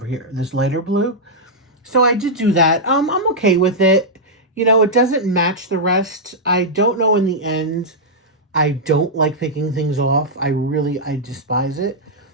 here, this lighter blue. So I did do that. I'm okay with it. You know, it doesn't match the rest. I don't know in the end. I don't like picking things off. I despise it.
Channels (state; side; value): normal; both; correlation -0.07